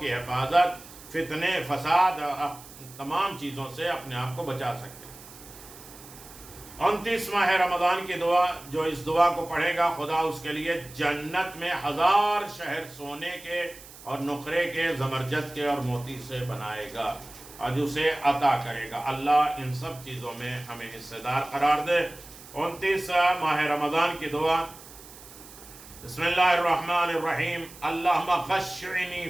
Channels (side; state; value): right; noise; hiss, 18 dB below the sound